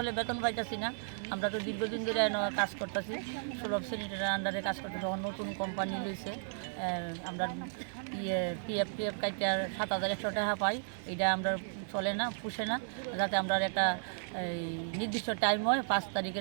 বেতন পাইতেছি না। আমরা তো দীর্ঘদিন ধরে কাজ করতেছি, সুলভ শ্রেণীর আন্ডারে কাজ করতেছি। যখন নতুন কোম্পানি লইছে আমরা পিএফ কাইটা 7,100 টাকা পাই, এটা আমরা চলে না, পুষে না। যাতে আমরা একটা নির্দিষ্ট টাইম হয় 5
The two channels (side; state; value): left; silent; digital silence